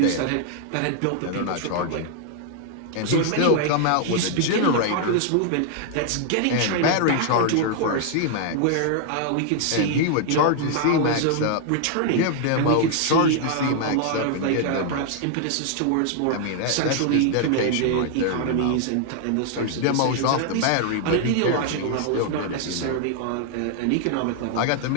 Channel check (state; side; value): different; both; correlation 0.00